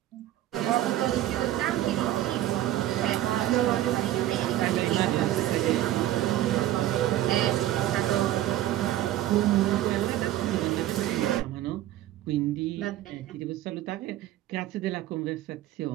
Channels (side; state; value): left; quieter; 13.8 dB